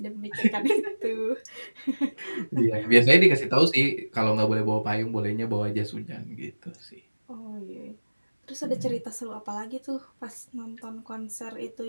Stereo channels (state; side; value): inverted; both; correlation -1.00